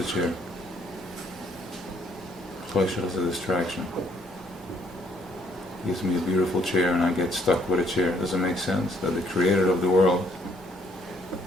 chair. Pleasure is a distraction. He gives me a beautiful chair and I get stuck with a chair. Does it make sense that the Creator of the world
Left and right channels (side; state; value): both; normal; correlation 0.67